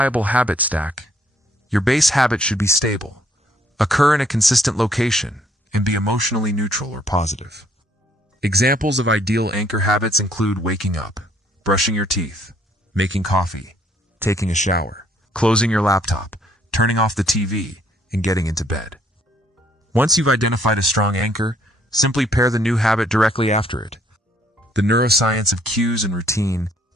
habit stack, your base habit should be stable, occur in a consistent location, and be emotionally neutral or positive. Examples of ideal anchor habits include waking up, brushing your teeth, making coffee, taking a shower, closing your laptop, turning off the TV, and getting into bed. Once you've identified a strong anchor, simply pair the new habit directly after it. The neuroscience of cues and routine.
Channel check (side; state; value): both; normal; correlation 0.65